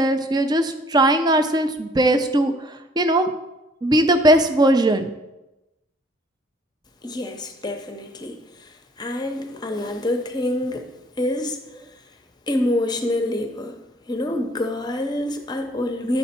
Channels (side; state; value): both; normal; correlation 0.58